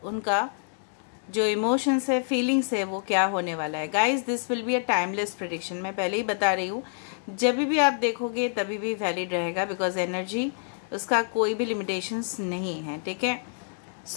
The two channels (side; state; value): right; silent; digital silence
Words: उनका जो इमोशंस है, फीलिंग्स है, वो क्या होने वाला है। Guys this will be a timeless prediction. मैं पहले ही बता रही हूँ, जब भी आप देखोगे तभी भी वैलिड रहेगा, बिकॉज एनर्जी उसका कोई भी लिमिटेशंस नहीं है। ठीक है,